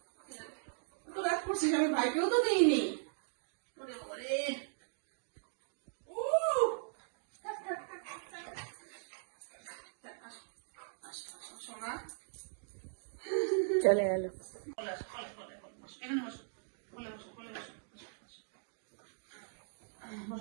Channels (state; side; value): silent; left; digital silence